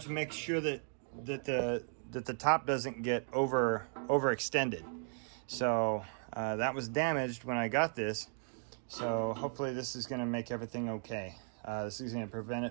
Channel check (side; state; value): left; silent; 54 dB below the other